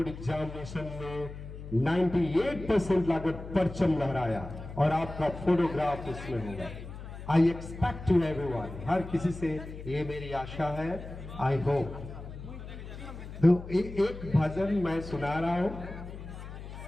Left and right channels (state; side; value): noise; left; hum, 11 dB below the sound